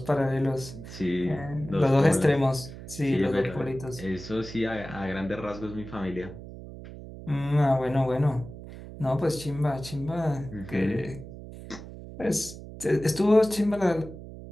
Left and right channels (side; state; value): right; noise; hum, 13 dB below the sound